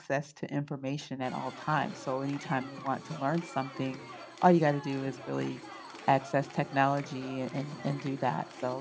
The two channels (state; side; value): identical; both; correlation 1.00